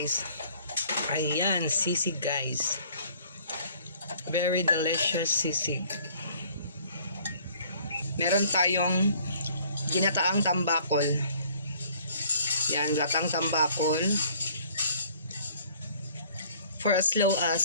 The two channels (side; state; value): both; inverted; correlation -0.56